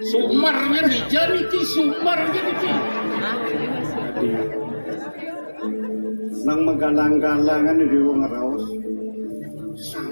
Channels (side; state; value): both; inverted; correlation -1.00